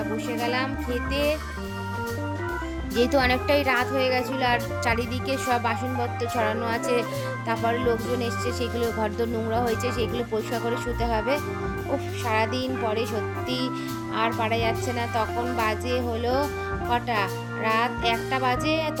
বসে গেলাম খেতে, যেহেতু অনেকটাই রাত হয়ে গেছিলো আর চারিদিকে সব বাসনপত্র ছড়ানো আছে, তারপর লোকজন এসছে, সেগুলো ঘরদোর নোংরা হয়েছে, সেগুলো পরিষ্কার করে শুতে হবে। উফ, সারাদিন পরে সত্যি আর পারা যাচ্ছে না। তখন বাজে হলো কটা, রাত 1টা বাজে,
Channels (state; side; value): identical; both; correlation 1.00